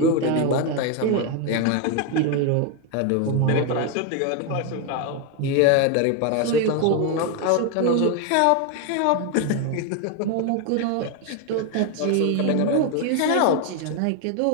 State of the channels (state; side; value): different; both; correlation 0.01